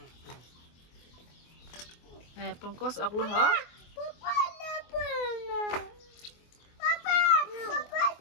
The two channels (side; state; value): right; late; 24 ms